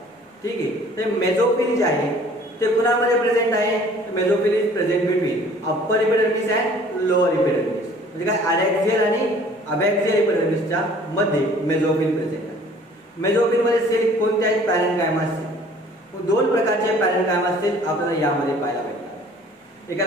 ठीक आहे. तर मेझोफिल जे आहे ते कुणामध्ये प्रेझेंट आहे? Mesophyll is present between upper epidermis and lower epidermis. म्हणजे काय? अडॅक्सियल आणि अबॅक्सियल इपिडर्मिसच्या मध्ये मेझोफिल प्रेझेंट आहे. मेझोफिल मध्ये सेल कोणत्याही पॅरेन्काइमा असतील. 2 प्रकारचे पॅरेन्काइमा असतील आपल्याला यामध्ये पाहायला भेटतात.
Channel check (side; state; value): both; normal; correlation 0.53